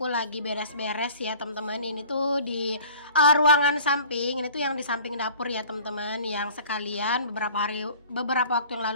lagi beres-beres ya teman-teman. Ini tuh di ruangan samping, ini tuh yang di samping dapur ya teman-teman, yang sekalian beberapa waktu yang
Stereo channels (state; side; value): inverted; both; correlation -0.47